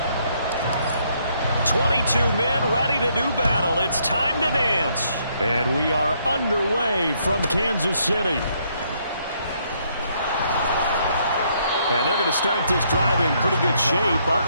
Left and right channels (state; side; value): inverted; both; correlation -0.71